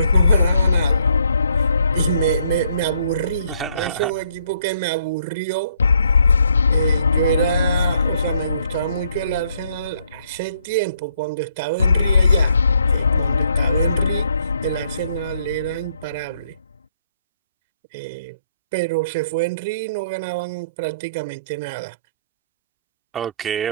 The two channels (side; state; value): both; inverted; correlation -0.69